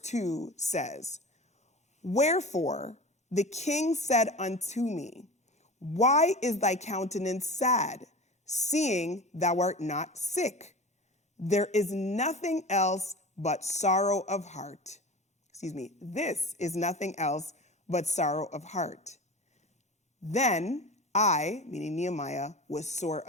says, wherefore the king said unto me, why is thy countenance sad, seeing thou art not sick? There is nothing else but sorrow of heart. This is nothing else but sorrow of heart. Then I, meaning Nehemiah, was sore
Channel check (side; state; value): both; normal; correlation 0.33